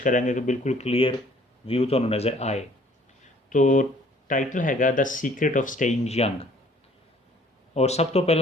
कि बिल्कुल क्लीयर व्यू तुहानूं नज़र आए। तो टाइटल हैगा the secret of staying young. और सब तो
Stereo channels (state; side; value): normal; both; correlation 0.57